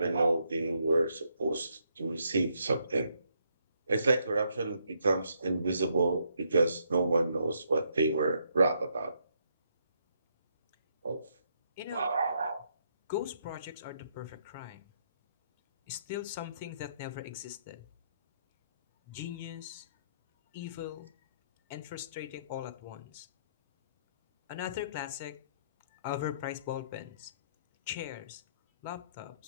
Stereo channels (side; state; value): both; inverted; correlation -0.74